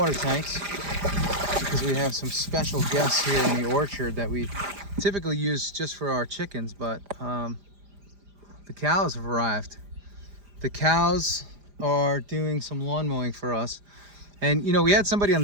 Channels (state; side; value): late; left; 5.0 ms